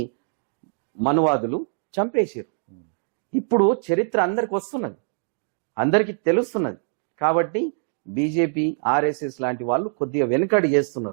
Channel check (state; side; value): silent; left; digital silence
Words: మనువాదులు చంపేశారు. ఇప్పుడు చరిత్ర అందరికి వస్తున్నది, అందరికి తెలుస్తున్నది. కాబట్టి బీజేపీ, ఆర్ఎస్ఎస్ లాంటి వాళ్ళు కొద్దిగా వెనుకడు